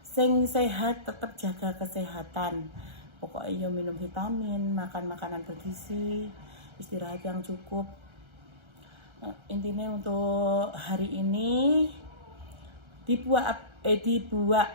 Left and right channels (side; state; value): left; late; 1.3 ms